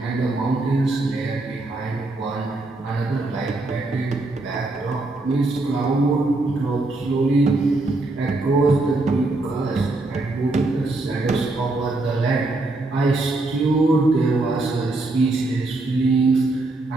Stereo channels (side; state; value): left; quieter; 3.0 dB